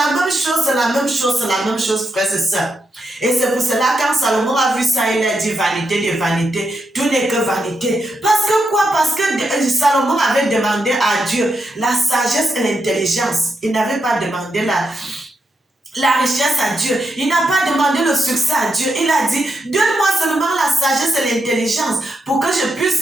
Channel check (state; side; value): normal; both; correlation 0.83